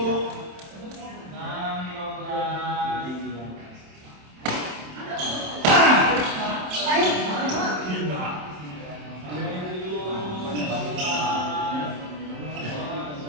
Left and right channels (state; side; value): late; left; 27 ms